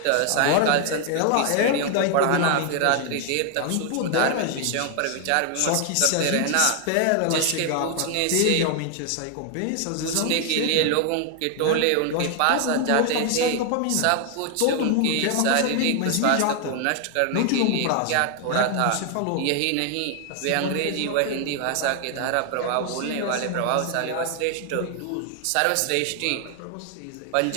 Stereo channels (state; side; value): different; both; correlation 0.00